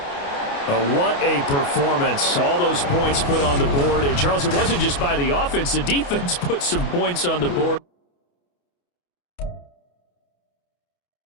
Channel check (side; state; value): right; late; 28 ms